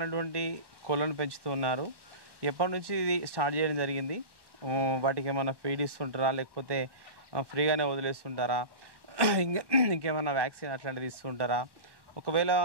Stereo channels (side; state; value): left; late; 1.1 ms